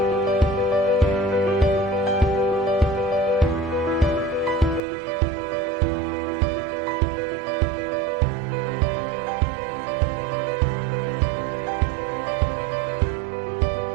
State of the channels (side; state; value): left; drops out; at 4.8 s